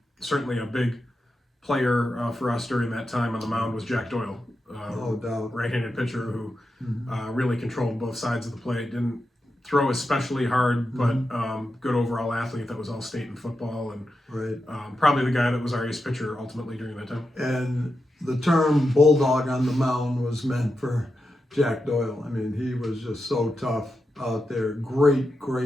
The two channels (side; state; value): both; normal; correlation 0.88